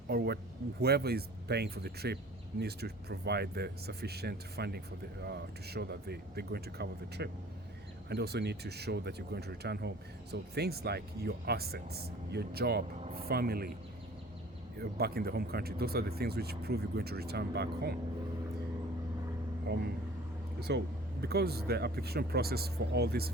or whoever is paying for the trip needs to provide the sufficient funding for the to show that they're going to cover the trip, and also need to show that you're going to return home. So things like your assets, your job, family back in the home country, those are the things which prove you're going to return back home. So because the application process for all these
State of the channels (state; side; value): normal; both; correlation 0.47